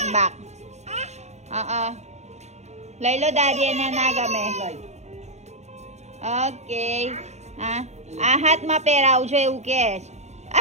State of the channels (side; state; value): left; late; 0.33 ms